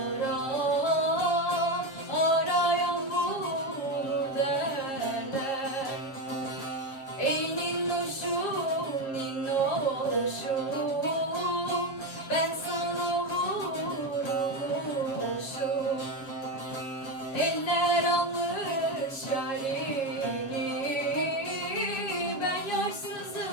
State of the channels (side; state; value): right; late; 7.3 ms